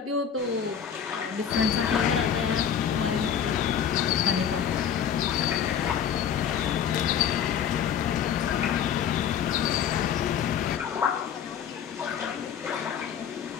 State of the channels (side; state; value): right; quieter; 8.4 dB